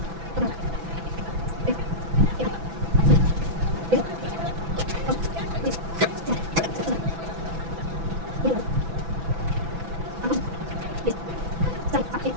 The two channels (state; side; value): late; left; 6.0 ms